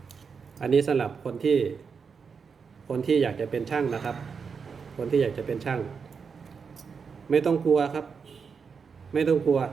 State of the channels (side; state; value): left; quieter; 5.8 dB